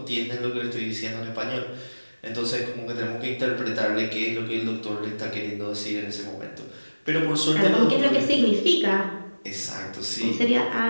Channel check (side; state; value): both; inverted; correlation -1.00